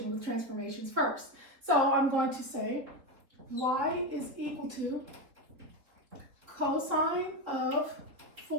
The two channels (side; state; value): left; late; 4.0 ms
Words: with transformations first. So I'm going to say y is equal to cosine of